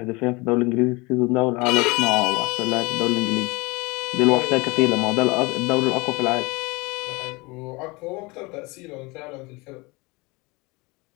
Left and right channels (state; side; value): quieter; right; 25.3 dB